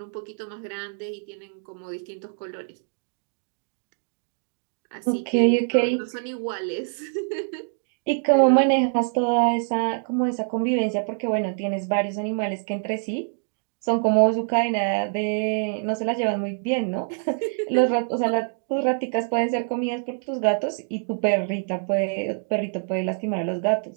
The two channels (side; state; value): left; silent; 62 dB below the other